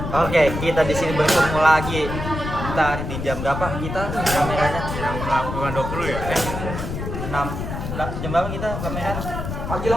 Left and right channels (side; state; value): left; noise; rumble, 5 dB below the sound